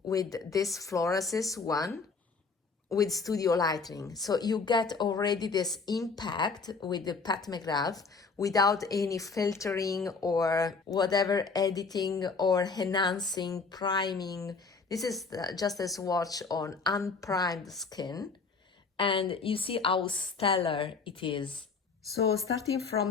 with this Florasis one with studio lighting. So you get already this impact with the Pat McGrath without any filtering or whatever editing or enhancing, priming. This is just a swatch on unprimed skin, and you see how stellar it is. So starting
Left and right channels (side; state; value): right; quieter; 4.6 dB